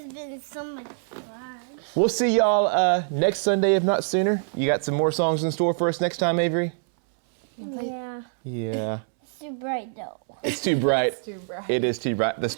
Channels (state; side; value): silent; left; 62 dB below the other